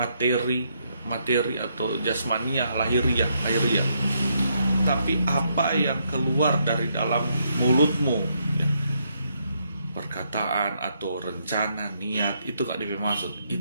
atau jasmania, lahiriah. Tapi apa yang keluar dari dalam mulutmu, ya, perkataan atau rencana, niat, itu gak dimaksud.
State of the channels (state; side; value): inverted; both; correlation -0.76